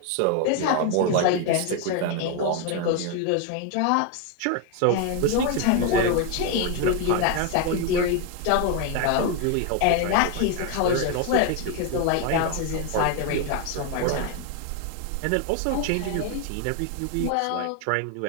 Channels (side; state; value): both; different; correlation 0.01